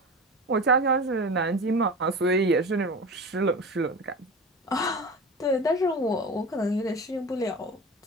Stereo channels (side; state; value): both; normal; correlation 0.31